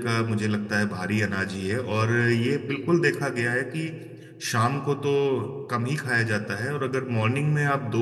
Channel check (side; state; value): both; identical; correlation 1.00